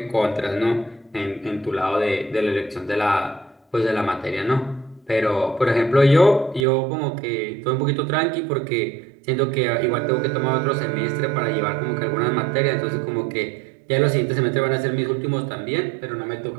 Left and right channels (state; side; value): drops out; left; at 6.7 s